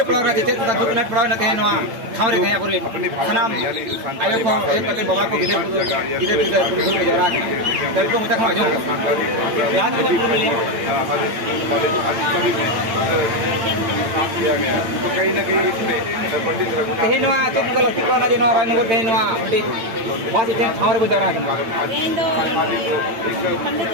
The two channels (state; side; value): late; left; 8.9 ms